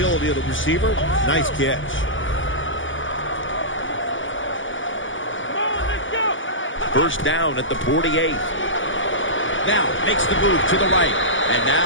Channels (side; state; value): right; late; 0.56 ms